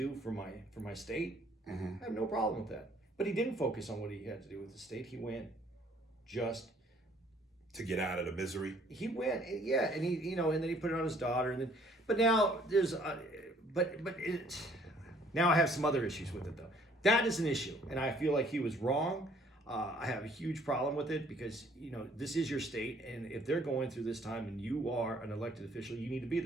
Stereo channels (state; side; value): normal; both; correlation 0.60